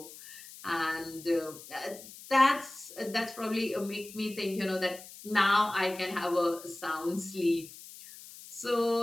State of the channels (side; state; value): left; noise; hiss, 16 dB below the sound